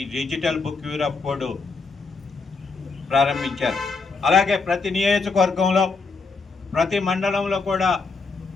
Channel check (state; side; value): quieter; right; 4.2 dB